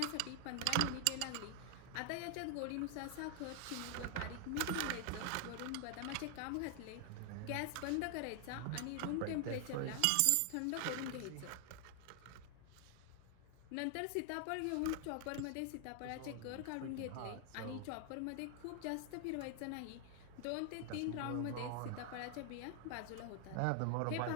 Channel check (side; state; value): both; different; correlation 0.00